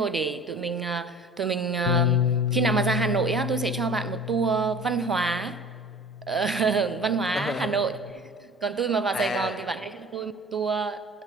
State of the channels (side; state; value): both; normal; correlation 0.43